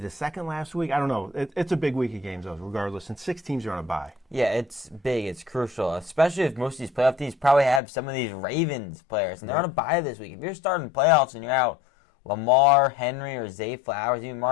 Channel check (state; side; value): drops out; right; at 7.8 s